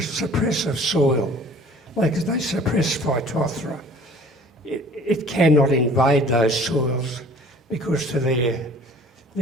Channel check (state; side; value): normal; both; correlation 0.49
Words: soil. They suppress Phytophthora. It cannot invade those soils because